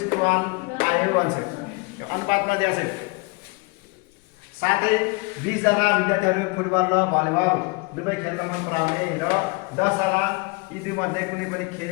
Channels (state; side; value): quieter; right; 28.3 dB